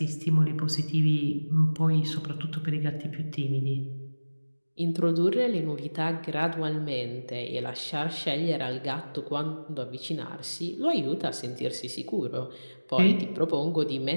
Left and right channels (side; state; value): both; inverted; correlation -1.00